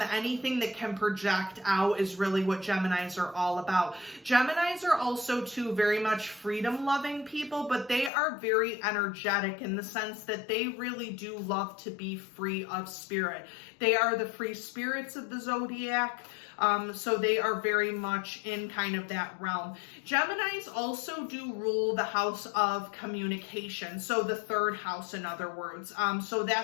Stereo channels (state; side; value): drops out; right; at 8.1 s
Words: that can project out is really what Geminis are all about. Geminis are also too very much freedom-loving people, but they are very energetic in the sense that they really do love to be free of spirit. They are the free spirits of the zodiac. So they are very much in kind of that realm. Geminis also do rule the house of communication. So the third house, in other words. So